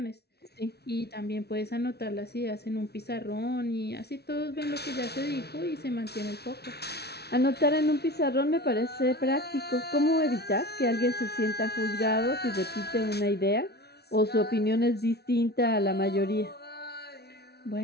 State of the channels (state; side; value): late; right; 0.48 ms